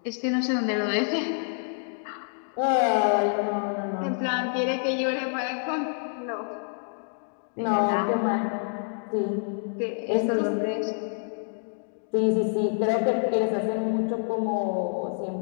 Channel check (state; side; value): silent; right; digital silence